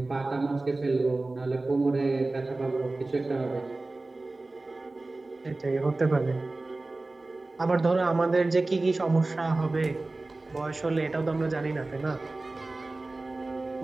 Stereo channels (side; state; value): left; quieter; 3.1 dB